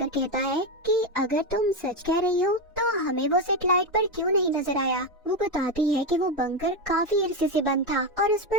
कहता है कि अगर तुम सच कह रही हो तो हमें वो सैटेलाइट पर क्यों नहीं नजर आया। वो बताती है कि वो बंकर काफी अरसे से बंद था और उस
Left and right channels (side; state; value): both; normal; correlation 0.11